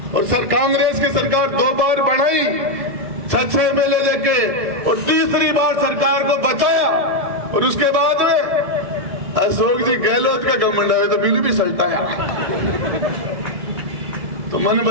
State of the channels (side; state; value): left; late; 1.7 ms